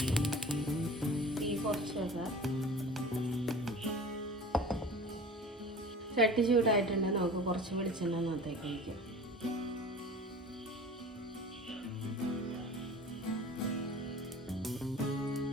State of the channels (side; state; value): both; normal; correlation 0.40